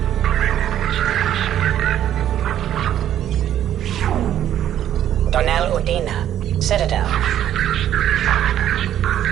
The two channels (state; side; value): quieter; left; 11.1 dB